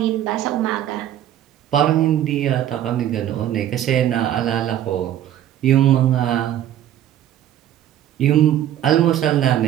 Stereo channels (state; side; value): quieter; left; 11.5 dB